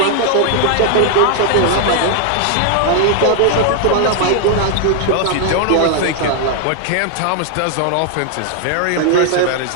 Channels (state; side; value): different; both; correlation 0.00